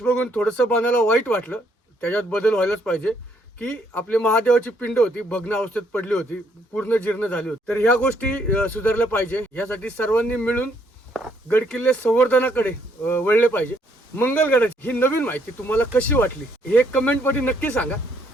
बघून थोडंसं बनायला वाईट वाटलं, त्याच्यात बदल व्हायलाच पाहिजे. की आपली महादेवाची पिंड होती भग्न अवस्थेत पडली होती, पूर्ण जीर्ण झाली होती. तर ह्या गोष्टी सुधारल्या पाहिजे. यासाठी सर्वांनी मिळून गडकिल्ले संवर्धनाकडे वळले पाहिजे. मंगलगडाची ही नवीन माहिती तुम्हाला कशी वाटली हे कमेंट मध्ये नक्की सांगा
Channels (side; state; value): both; normal; correlation 0.70